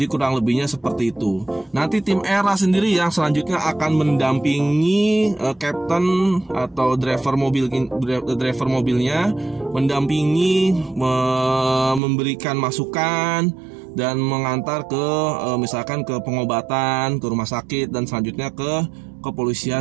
kurang lebihnya seperti itu. Nanti tim ERA sendiri yang selanjutnya akan mendampingi captain atau driver mobilnya, mendampingi, memberikan masukan, dan mengantar ke misalkan ke pengobatan, ke rumah sakit, dan selanjutnya ke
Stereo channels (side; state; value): left; drops out; at 12.0 s